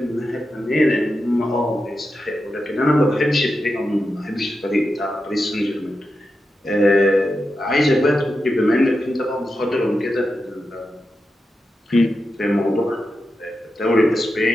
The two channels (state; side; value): normal; both; correlation 0.89